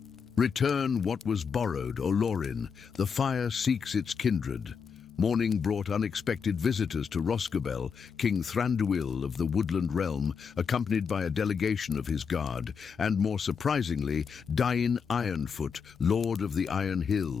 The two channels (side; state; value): right; quieter; 6.2 dB